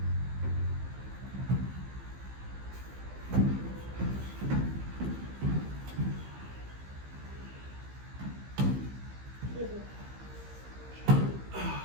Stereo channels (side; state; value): left; late; 15 ms